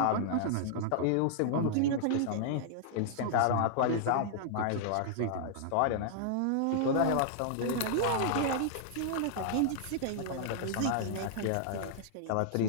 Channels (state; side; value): different; both; correlation -0.01